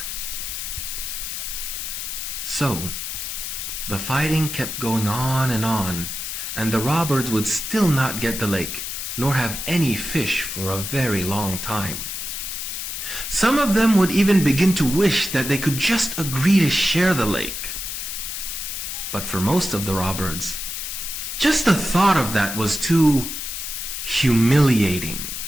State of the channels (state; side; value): noise; left; hiss, 5 dB below the sound